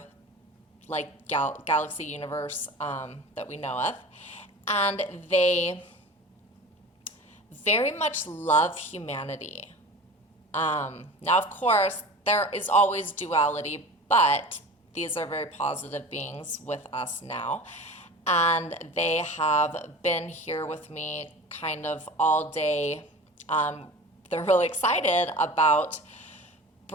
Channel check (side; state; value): both; normal; correlation 0.37